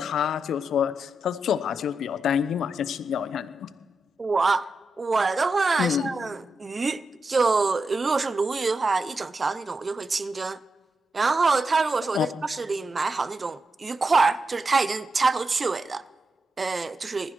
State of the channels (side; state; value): both; normal; correlation 0.87